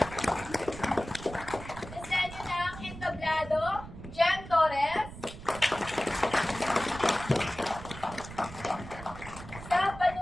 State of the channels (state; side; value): noise; right; rumble, 13 dB below the sound